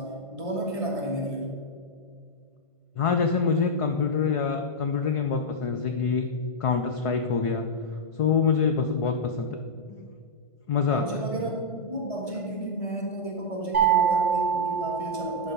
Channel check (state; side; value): late; right; 1.5 ms